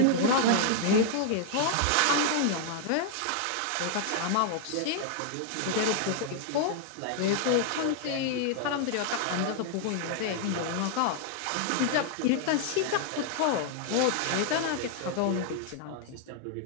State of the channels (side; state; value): both; different; correlation 0.00